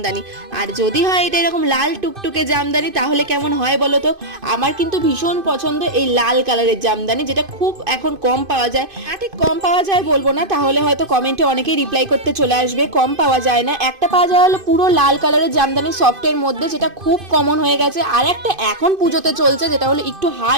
আর যদি হয় এটা এরকম লাল টুকটুকে জামদানি, তাহলে কেমন হয় বলো তো? আমার কিন্তু ভীষণ পছন্দ এই লাল কালারের জামদানি, যেটা খুব এখন কম পাওয়া যায়। ঠিক কম পাওয়া যায় বলবো না, তাহলে হয়তো কমেন্টে অনেকেই রিপ্লাই করতে চলে আসবে। কম পাওয়া যায় না, একটা পাওয়া যায় হলো পুরো লাল কালারের জামদানি সফটের মধ্যে, যেটা খুব কমন হয়ে গেছে। আর একটা এখন পুজোতে চলছে যেটা হলো একটু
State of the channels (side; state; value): left; late; 2.5 ms